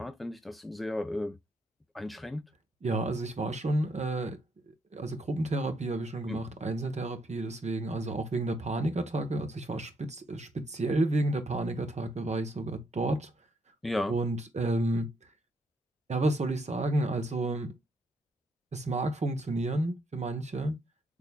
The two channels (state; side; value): normal; both; correlation 0.74